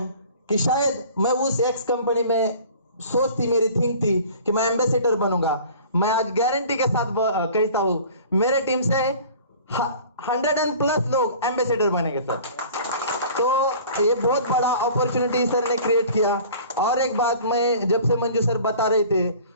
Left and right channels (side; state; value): both; inverted; correlation -0.46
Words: कि शायद मैं उस एक्स कंपनी में, सोच थी मेरी, थिंक थी कि मैं एम्बेसडर बनूंगा। मैं आज गारंटी के साथ कहता हूं मेरे टीम से 100+ लोग एम्बेसडर बनेंगे सर। तो ये बहुत बड़ा अपॉर्चुनिटी सर ने क्रिएट किया। और एक बात, मैं जब से मंजू सर बता रहे थे